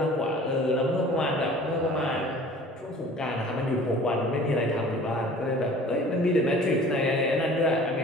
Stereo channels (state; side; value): normal; both; correlation 0.47